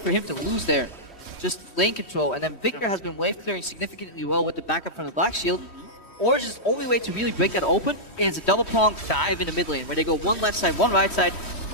him to lose there. Just lane control, and then Victor has been wave clearing significantly well with the backup from the Black Shield. Origen's only way to really break that open is a double prong dive in the mid lane, where they go one left side, one right side,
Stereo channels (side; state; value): right; late; 3.1 ms